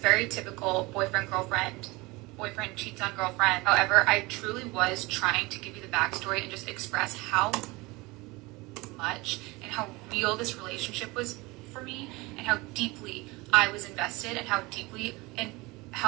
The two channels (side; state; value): left; quieter; 23.2 dB